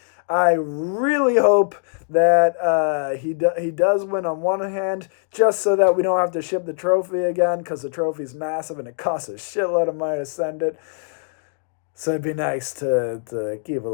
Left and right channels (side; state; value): right; silent; digital silence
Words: I really hope that he does win on one hand, just so that we don't have to ship the trophy again, because the trophy's massive and it costs a shitload of money to send it. So it'd be nice to keep a